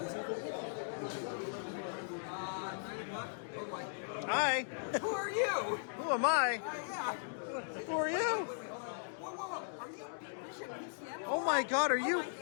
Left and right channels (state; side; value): silent; right; digital silence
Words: Hi. Who are you? Who am I? Yeah. Who are you? Whoa. Are you BBISHOPPCM? Oh my God! Are you